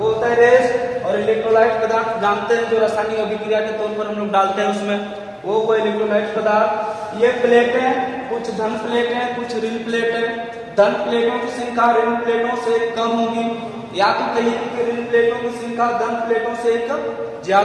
होता है रेस्ट। और इलेक्ट्रोलाइट पदार्थ जानते हैं जो रासायनिक अभिक्रिया के तौर पर हम लोग डालते हैं उसमें, वो इलेक्ट्रोलाइट पदार्थ। ये प्लेटें कुछ धन प्लेटें कुछ ऋण प्लेटें। धन प्लेटों की संख्या ऋण प्लेटों से कम होगी, या तो कहिए कि ऋण प्लेटों की संख्या धन प्लेटों से एक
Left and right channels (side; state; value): both; identical; correlation 1.00